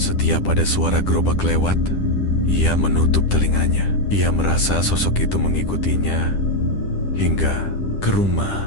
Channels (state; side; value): late; right; 10 ms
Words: ada suara gerobak lewat, ia menutup telinganya. Ia merasa sosok itu mengikutinya hingga ke